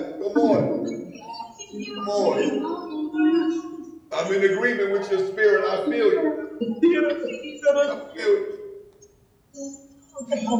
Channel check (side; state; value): both; identical; correlation 1.00